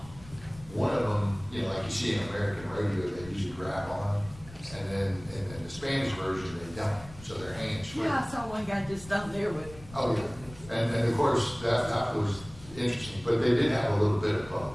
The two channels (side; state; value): left; noise; rumble, 18 dB below the sound